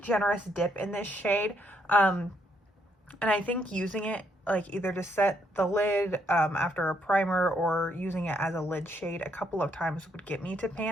generous dip in this shade, and I think using it like either to set the lid after a primer or using it as a lid shade a couple of times would get me to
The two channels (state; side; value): normal; both; correlation 0.73